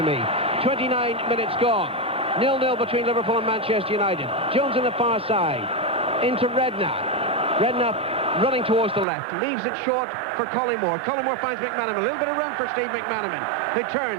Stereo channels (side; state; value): left; drops out; at 9.1 s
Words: me. 29 minutes gone. 0-0 between Liverpool and Manchester United. Jones on the far side. Into Redknapp. Redknapp running towards the left. Leaves it short for Collymore. Collymore finds McManaman. A little bit of room for Steve McManaman. Who